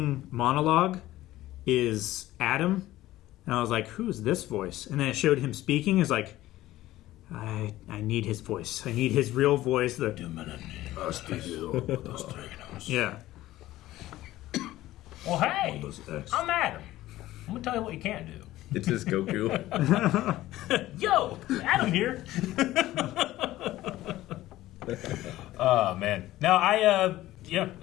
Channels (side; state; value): right; quieter; 15.7 dB